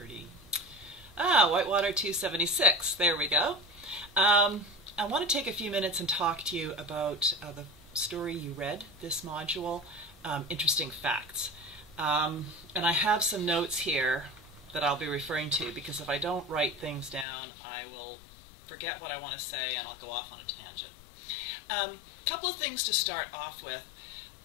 Whitewater 276, there we go. I want to take a few minutes and talk to you about the story you read this module, Interesting Facts. And I have some notes here that I'll be referring to because if I don't write things down, I will forget what I want to say and I'll go off on a tangent. Couple of things to start off with.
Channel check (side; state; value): right; drops out; at 17.2 s